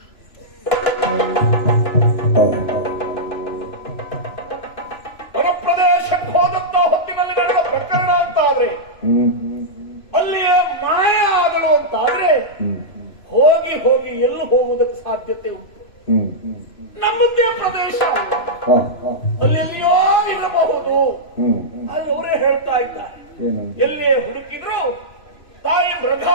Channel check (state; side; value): late; right; 3.0 ms